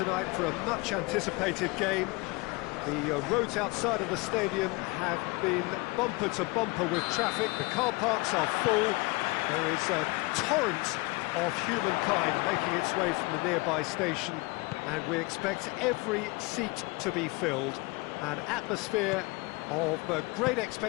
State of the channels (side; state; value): right; quieter; 25.4 dB